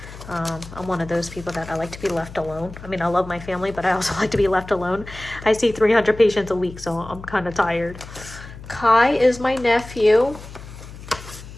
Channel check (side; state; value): left; noise; hum, 15 dB below the sound